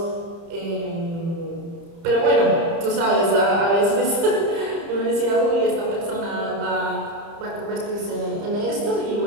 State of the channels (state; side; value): late; left; 30 ms